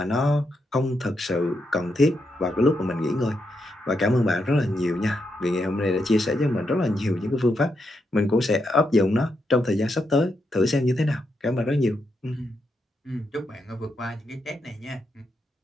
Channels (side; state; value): both; normal; correlation 0.82